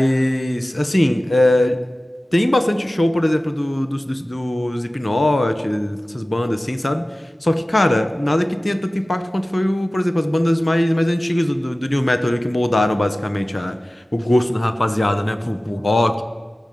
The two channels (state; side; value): normal; both; correlation 0.97